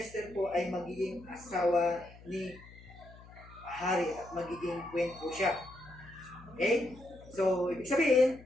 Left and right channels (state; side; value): noise; left; hum, 20 dB below the sound